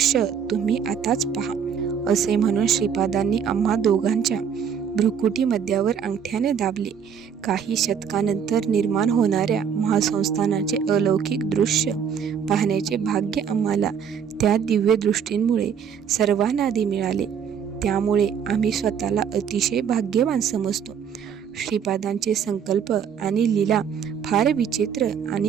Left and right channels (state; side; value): quieter; left; 7.5 dB